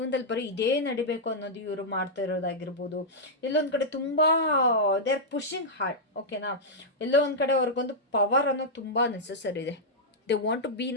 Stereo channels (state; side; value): normal; both; correlation -0.08